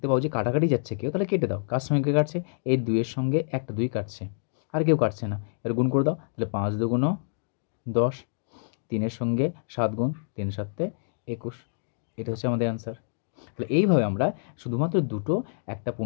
পাও যে কাটাকাটি যাচ্ছে কেউ, তাহলে কেটে দাও। কার সঙ্গে কে কাটছে? এই 2-এর সঙ্গে একটা 2 কাটছে, আর কেউ কাটছে না, এর গুণ করে দাও। তাহলে 5 দুগুণ 10, 3-এর সঙ্গে 7 গুণ, 3 7 21। এটা হচ্ছে আমাদের অ্যান্সার। তাহলে এইভাবে আমরা শুধুমাত্র দুটো, একটা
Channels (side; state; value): right; silent; digital silence